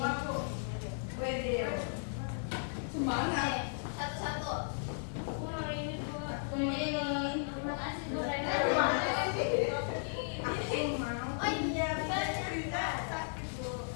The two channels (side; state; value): right; silent; digital silence